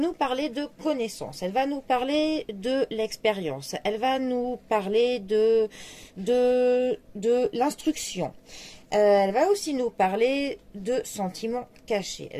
parler de connaissance, elle va nous parler de l'expérience, elle va nous parler de l'instruction. Elle va aussi nous parler de sentiments cachés,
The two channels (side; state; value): both; identical; correlation 1.00